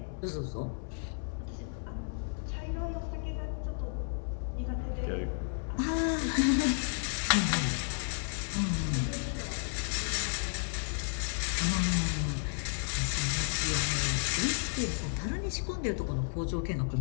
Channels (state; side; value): silent; right; digital silence